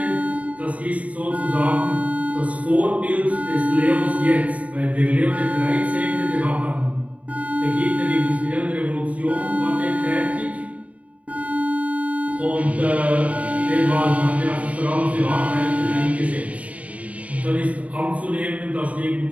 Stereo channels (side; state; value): left; late; 0.067 ms